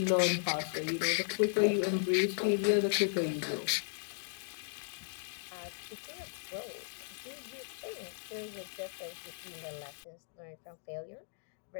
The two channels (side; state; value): right; silent; digital silence